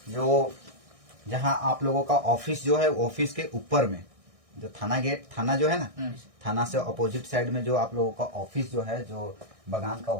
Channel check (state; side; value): late; left; 1.6 ms